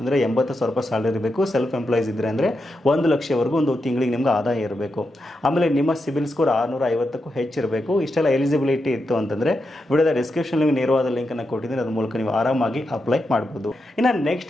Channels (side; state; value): both; normal; correlation 0.86